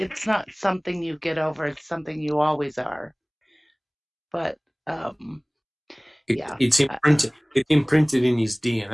not something you get over, it's something you always are. But it's imprinted. It's imprinted in his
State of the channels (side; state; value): both; identical; correlation 1.00